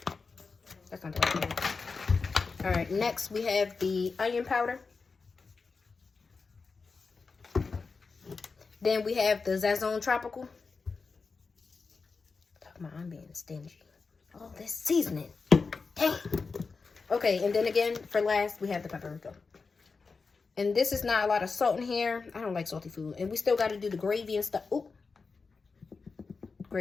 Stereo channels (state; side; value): quieter; right; 4.6 dB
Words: That's not the right one. All right, next we have the onion powder. Then we have the Sazon Tropical. Talking about I'm being stingy. All this seasoning. Dang. Okay, and then again, for last, we have the paprika. And this is not a lot of salt in here. I don't like salty food. And we still got to do the gravy and stuff. Ooh.